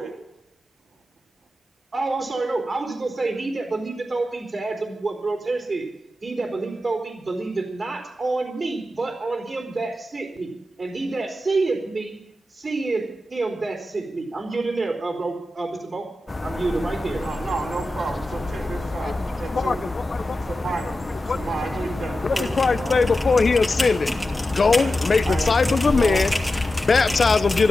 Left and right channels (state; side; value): normal; both; correlation 0.92